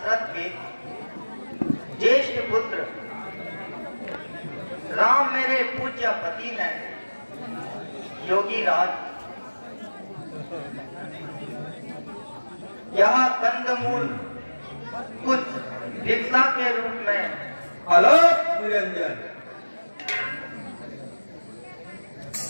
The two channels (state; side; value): inverted; both; correlation -1.00